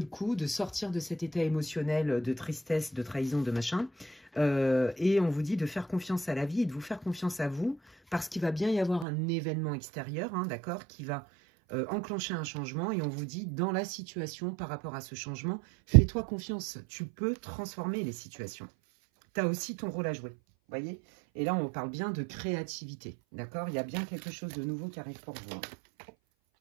coup, de sortir de cet état émotionnel de tristesse, de trahison, de machin. Et on vous dit de faire confiance à la vie et de vous faire confiance à vous, parce qu'il va bien y avoir un événement extérieur, hein, d'accord, qui va enclencher un changement. Et on vous dit, dans la situation, par rapport à ce changement, fais-toi confiance. Tu peux transformer les situations. Tu as aussi ton rôle à jouer, voyez? Et là, on parle bien de créativité, d'accord? Il y a bien quelque chose de nouveau qui arrive pour vous. Hein.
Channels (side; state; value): left; drops out; at 9.1 s